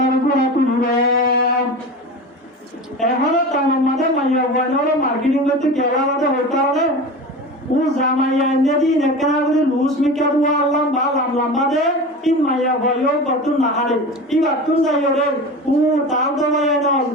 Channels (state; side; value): normal; both; correlation 0.30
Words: গুণা তুলবে এখন তার মধ্যে মাইয়া গুয়ায়ো মার্কেটিং করতে কেলা মধ্যে হইতে হবে ও জামাইয়া নেদি নেকনা করে লুজ মিকা দুয়া আল্লাহ বা লম্বা দে ইন মাইয়া গুয়ায়ো গতুন নাহারে ই গতুন যাইও রে ও তাল দমাইয়া না